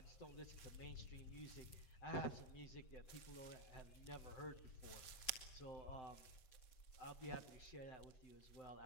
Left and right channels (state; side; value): late; right; 7.2 ms